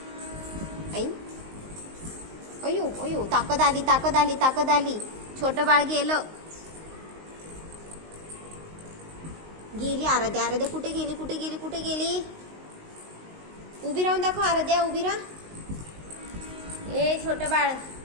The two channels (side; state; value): left; late; 19 ms